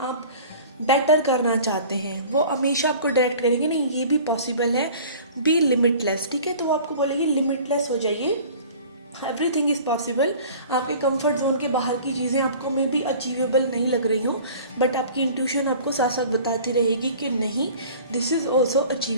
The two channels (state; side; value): inverted; both; correlation -0.44